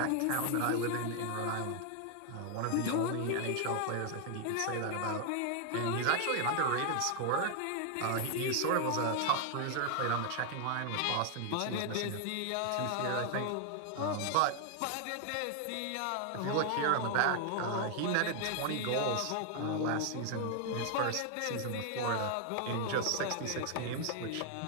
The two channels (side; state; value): both; different; correlation 0.00